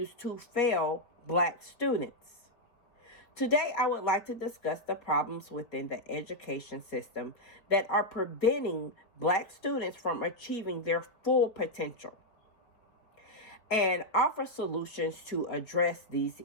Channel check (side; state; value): right; late; 4.3 ms